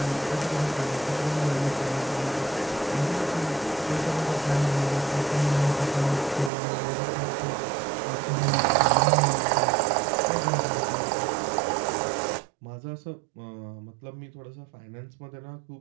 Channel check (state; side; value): drops out; left; at 6.5 s